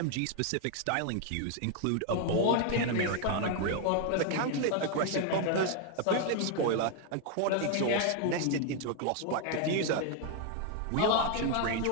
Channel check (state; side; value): different; both; correlation 0.01